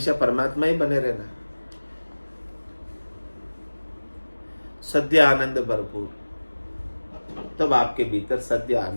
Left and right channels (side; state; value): both; inverted; correlation -1.00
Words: परमात्मा ही बने रहना है। सद्य आनंद भरपूर, तब आपके भीतर सद्य